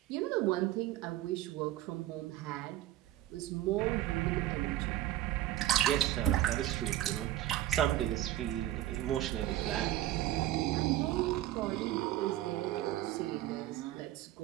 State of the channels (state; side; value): quieter; left; 13.9 dB